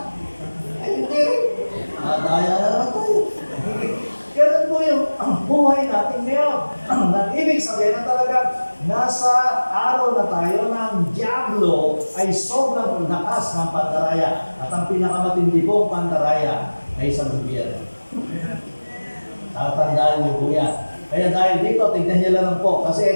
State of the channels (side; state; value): both; inverted; correlation -1.00